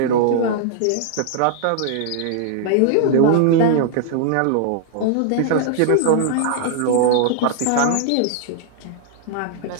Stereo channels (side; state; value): both; different; correlation -0.01